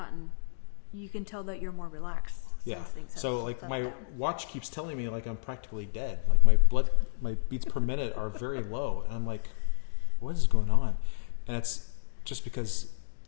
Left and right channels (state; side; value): silent; right; digital silence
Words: You can tell that you're more relaxed. Yeah. Things have So like my down. watch keeps telling me like I'm practically dead. Like my beats per minute are very low, and I'm like, what is going on? And it's just because